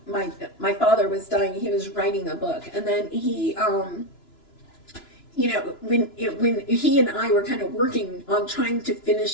my father was dying, he was writing a book, and then he when he and I were kind of working on trying to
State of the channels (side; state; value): right; late; 2.9 ms